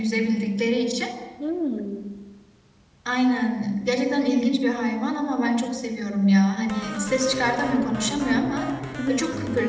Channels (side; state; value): both; identical; correlation 1.00